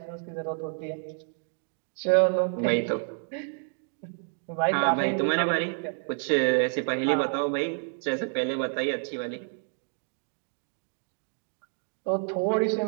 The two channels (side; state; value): left; silent; 55 dB below the other